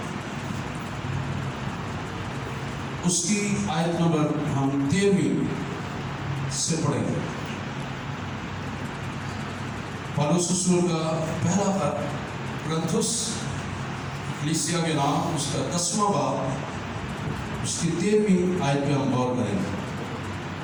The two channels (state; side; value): identical; both; correlation 1.00